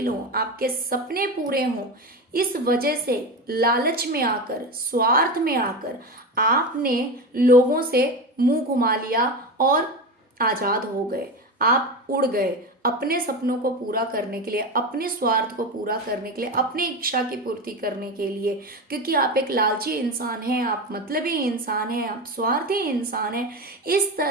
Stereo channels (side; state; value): both; normal; correlation 0.22